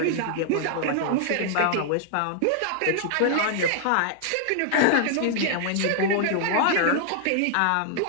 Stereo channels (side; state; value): both; different; correlation -0.01